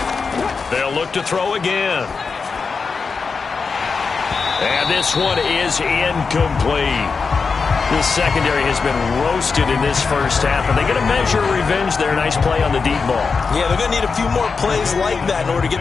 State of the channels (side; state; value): right; quieter; 5.0 dB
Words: They'll look to throw again. And this one is incomplete. The secondary has been roasted in this first half, and they get a measure of revenge there. Nice play on the deep ball. Yeah, they're going to need a few more plays like that in order to get